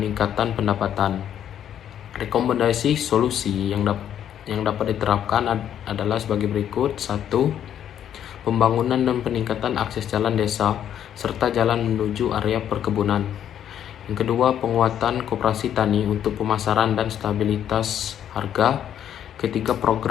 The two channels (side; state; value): right; quieter; 10.0 dB